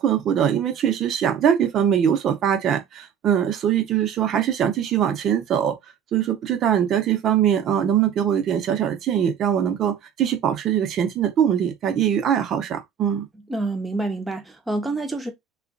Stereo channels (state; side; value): quieter; left; 8.4 dB